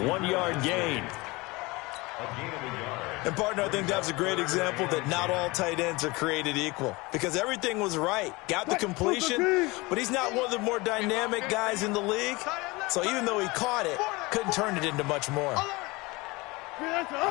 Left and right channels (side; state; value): right; quieter; 23.6 dB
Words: 1-yard gain. A gain of a yard. And, partner, I think that was a great example that not all tight ends are created equal, because everything was right. Got the completion, but he's not one of the more dynamic guys in the league. So even though he caught it, couldn't turn it into much more. On